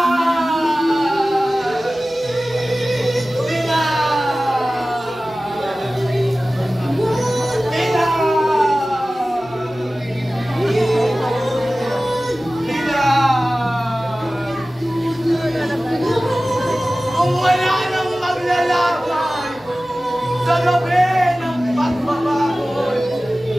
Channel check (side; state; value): right; noise; hum, 30 dB below the sound